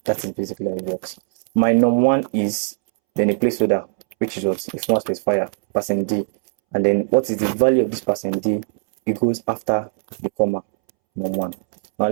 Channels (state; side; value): silent; left; 65 dB below the other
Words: That is basically how it works. My num1 is then a placeholder, which is what? A format specifier, %D. And then what is the value of this %D? It goes after the comma, num1. Now